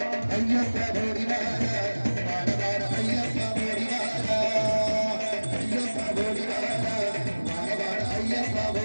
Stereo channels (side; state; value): both; inverted; correlation -1.00